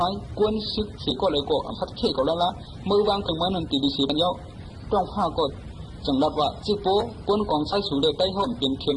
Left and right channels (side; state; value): both; identical; correlation 1.00